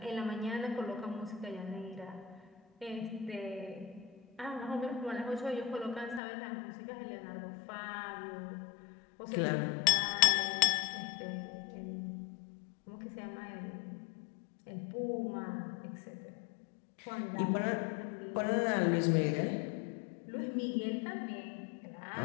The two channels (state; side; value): drops out; right; at 6.2 s